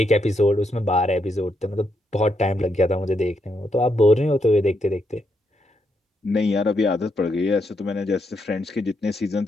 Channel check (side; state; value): both; normal; correlation 0.79